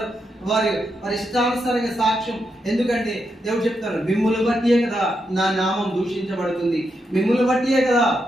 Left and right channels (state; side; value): normal; both; correlation 0.83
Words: వారి ఇష్టానుసారంగా సాక్ష్యం. ఎందుకంటే దేవుడు చెప్తారు, మిమ్ములు బట్టియే కదా నా నామం దూషించబడుతుంది, మిమ్ములు బట్టియే కదా